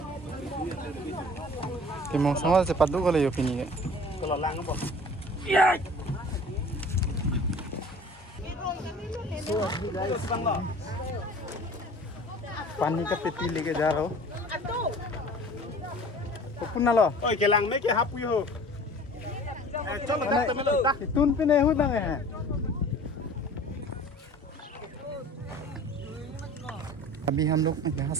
कि मौसम से पद्दू को ले यो पिनी है। Kalau lang apa? पानी का पेटी लेके जा रहा हूँ। पुन्ना लो। Oh, kelang me ke hapu yo. Chalo tak tamelo. तुन पे नहीं होता है। अभी हम लोग यहाँ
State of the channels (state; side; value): normal; both; correlation 0.45